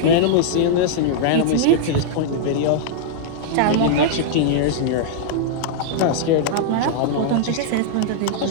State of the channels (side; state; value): both; different; correlation -0.02